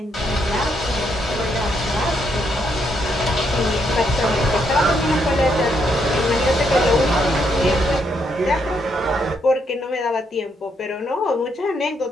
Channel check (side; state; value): both; normal; correlation 0.76